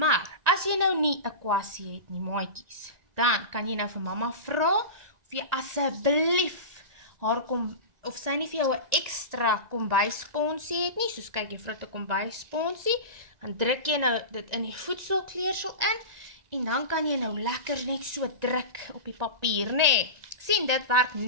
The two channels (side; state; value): left; late; 1.9 ms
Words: as jy nou nie 'n kwassie het nie, maatjies, dan kan jy nou vir mamma vra, of jy asseblief haar of sy nie vir jou 'n ekstra kombuissponsie het nie, soos kyk juffrou het 'n kombuissponsie, dan druk jy nou dit in die voedselkleursel in, en dan kan jy nou lekker net so druk op die papier, nee. Sien, dit werk